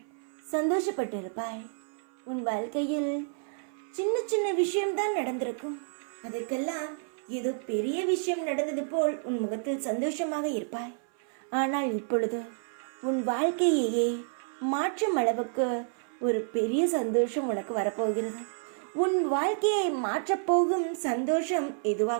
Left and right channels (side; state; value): left; silent; 58 dB below the other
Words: சந்தோஷப்பட்டு இருப்பாய். உன் வாழ்க்கையில் சின்ன சின்ன விஷயம்தான் நடந்திருக்கும். அதற்கெல்லாம் ஏதோ பெரிய விஷயம் நடந்தது போல் உன் முகத்தில் சந்தோஷமாக இருப்பாய். ஆனால் இப்பொழுது உன் வாழ்க்கையையே மாற்றும் அளவுக்கு ஒரு பெரிய சந்தோஷம் உனக்கு வரப்போகிறது. உன் வாழ்க்கையை மாற்றப்போகும் சந்தோஷம்